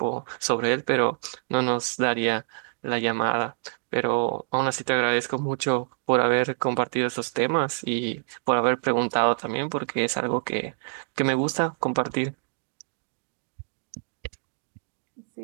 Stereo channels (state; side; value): silent; left; digital silence